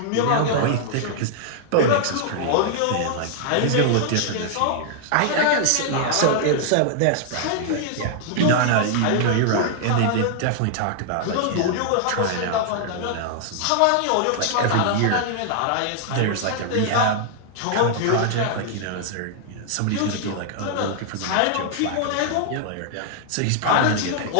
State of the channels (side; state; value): both; different; correlation -0.01